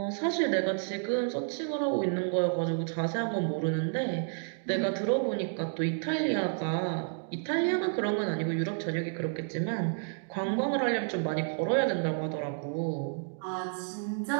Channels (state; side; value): silent; left; 57 dB below the other